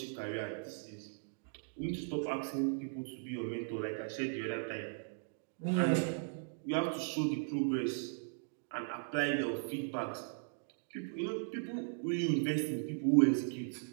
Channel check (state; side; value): silent; left; digital silence